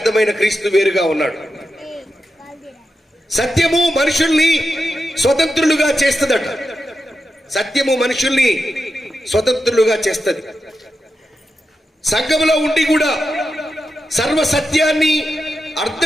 క్రీస్తు వేరుగా ఉన్నాడు. సత్యము మనుషుల్ని స్వతంత్రులుగా చేస్తుందట. సత్యము మనుషుల్ని స్వతంత్రులుగా చేస్తుంది. సంఘంలో ఉండి కూడా సర్వ సత్యాన్ని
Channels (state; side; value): normal; both; correlation 0.89